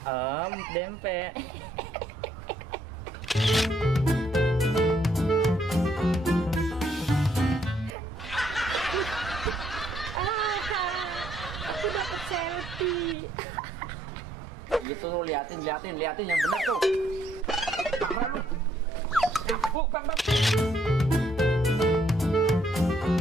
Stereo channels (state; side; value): normal; both; correlation 0.70